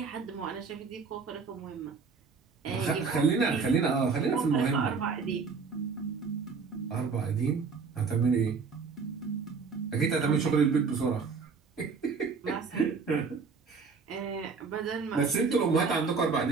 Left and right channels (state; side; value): quieter; left; 5.1 dB